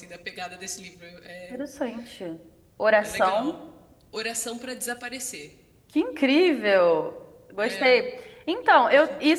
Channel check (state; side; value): identical; both; correlation 1.00